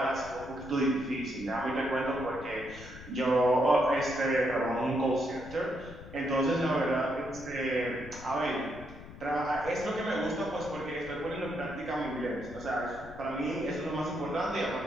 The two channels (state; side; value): noise; left; rumble, 15 dB below the sound